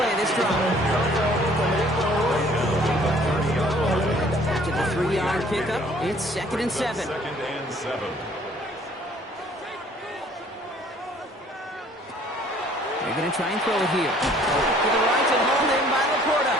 of this drive. After the 3-yard pickup, it's 2nd and 7. 2nd and 7. They're going to try and throw it here. To the right and hauled in by Laporta.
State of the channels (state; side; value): normal; both; correlation 0.57